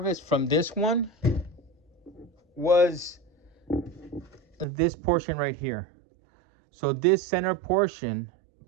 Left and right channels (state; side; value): drops out; left; at 4.7 s